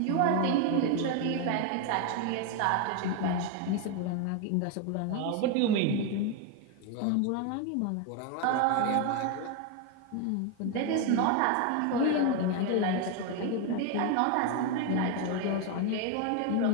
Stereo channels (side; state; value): both; different; correlation 0.01